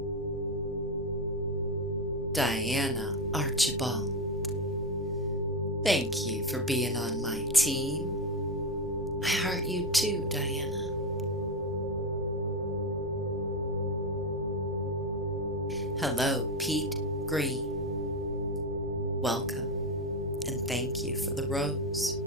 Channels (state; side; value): normal; both; correlation 0.13